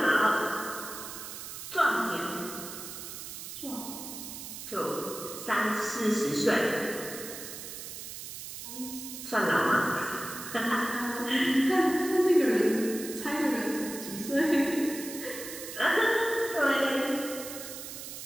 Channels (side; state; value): right; noise; hiss, 10 dB below the sound